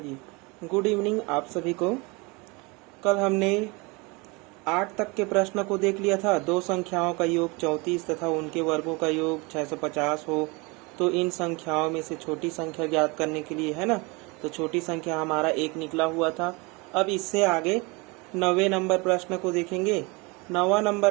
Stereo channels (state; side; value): quieter; left; 27.2 dB